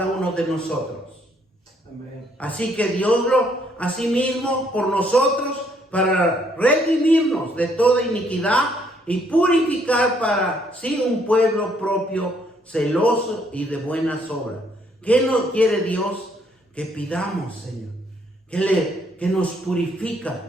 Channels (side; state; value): both; normal; correlation 0.68